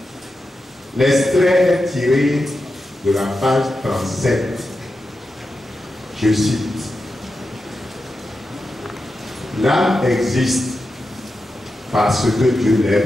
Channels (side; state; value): both; normal; correlation 0.90